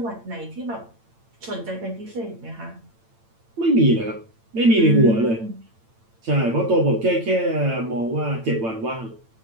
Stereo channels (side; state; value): left; late; 8.9 ms